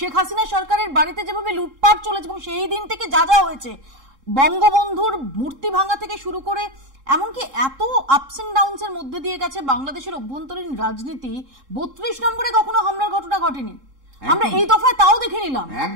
হাসিনা সরকারের বাড়িতে যেভাবে লুটপাট চলেছে এবং সেই দিন থেকে যা যা হয়েছে, বঙ্গবন্ধুর মূর্তি ভাঙা থেকে শুরু করে এমনকি এত আপস এন্ড ডাউনস এর মধ্যে দিয়ে গেছে বাংলাদেশের অভ্যন্তরীণ রাজনীতি, 32 নম্বরে কখনো হামলার ঘটনা ঘটেনি। আমরা এই দফায় তাও দেখে নিলাম।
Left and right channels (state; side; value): late; left; 3.7 ms